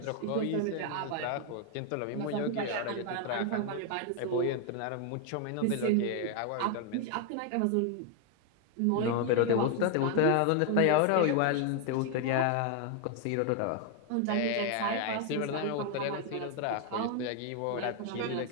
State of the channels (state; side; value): different; both; correlation 0.00